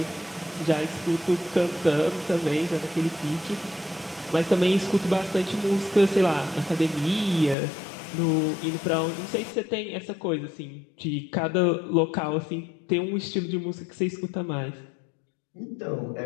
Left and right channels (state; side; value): drops out; right; at 7.6 s